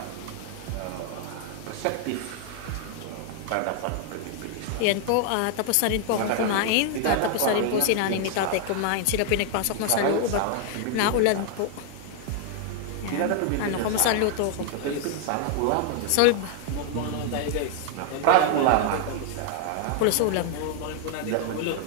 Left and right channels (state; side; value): different; both; correlation 0.00